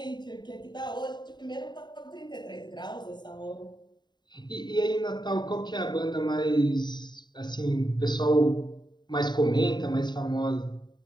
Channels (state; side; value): late; right; 0.21 ms